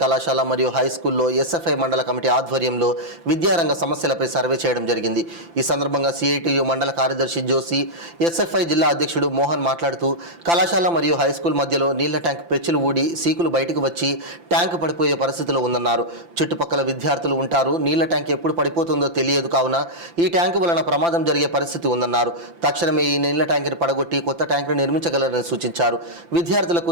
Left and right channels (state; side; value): late; left; 5.9 ms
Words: కళాశాల మరియు హై స్కూల్లో ఎస్ఎఫ్ఐ మండల కమిటీ ఆధ్వర్యంలో విద్యారంగ సమస్యలపై సర్వే చేయడం జరిగింది. ఈ సందర్భంగా సిఐటియు మండల కార్యదర్శి జోసి, ఎస్ఎఫ్ఐ జిల్లా అధ్యక్షుడు మోహన్ మాట్లాడుతూ కళాశాల మరియు హై స్కూల్ మధ్యలో నీళ్ల ట్యాంక్ పెచ్చులు ఊడి సీకులు బయటకు వచ్చి ట్యాంకు పడిపోయే పరిస్థితిలో ఉందన్నారు. చుట్టుపక్కల విద్యార్థులు ఉంటారు. నీళ్ల ట్యాంక్ ఎప్పుడు పడిపోతుందో తెలియదు కావున ఈ ట్యాంకు వలన ప్రమాదం జరిగే పరిస్థితి ఉందన్నారు. తక్షణమే ఈ నీళ్ల ట్యాంకుని పడగొట్టి కొత్త ట్యాంకును నిర్మించగలరని సూచించారు. విద్యార్థులకు